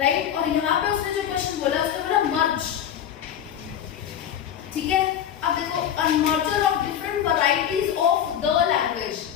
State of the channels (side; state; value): right; quieter; 9.7 dB